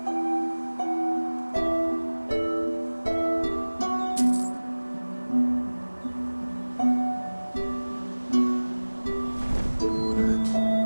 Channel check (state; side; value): inverted; both; correlation -1.00